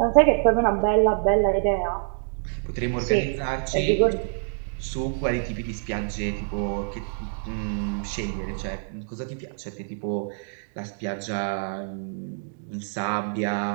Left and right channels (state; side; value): silent; left; digital silence